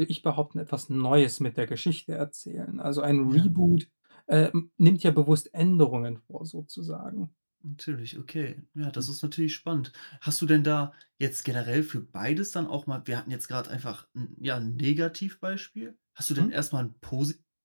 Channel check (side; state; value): both; inverted; correlation -1.00